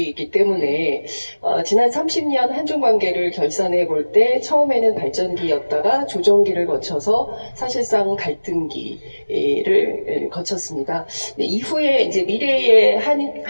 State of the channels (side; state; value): both; inverted; correlation -1.00